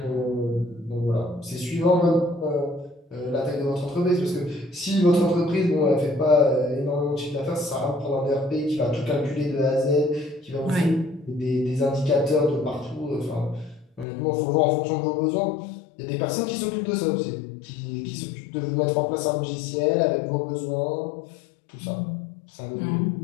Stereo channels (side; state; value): right; drops out; at 14.1 s